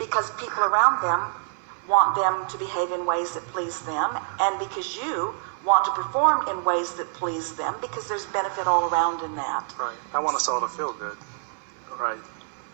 people around them want them to behave in ways that please them, and because you want to perform in ways that please them, because there's benefit all around in that. Right. I want us all to feel good. Right.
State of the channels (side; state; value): left; silent; 60 dB below the other